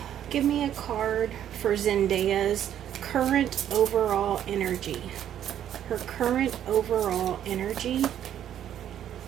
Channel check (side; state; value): left; quieter; 10.5 dB